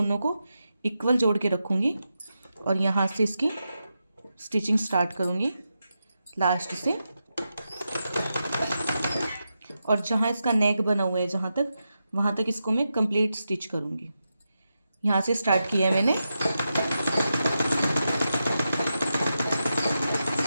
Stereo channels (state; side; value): inverted; both; correlation -0.88